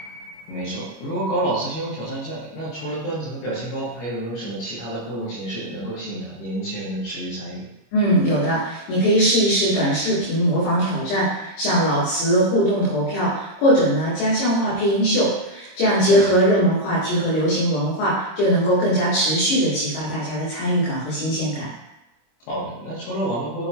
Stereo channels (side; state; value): right; late; 26 ms